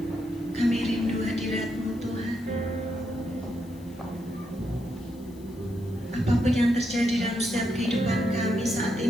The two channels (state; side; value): noise; left; hiss, 26 dB below the sound